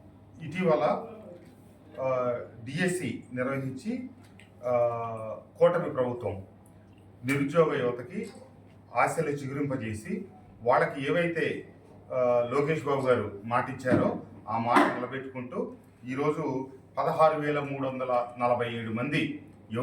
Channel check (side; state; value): both; identical; correlation 1.00